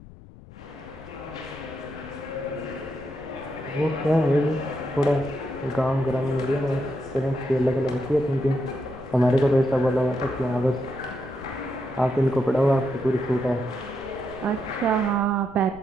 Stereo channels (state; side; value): noise; left; rumble, 20 dB below the sound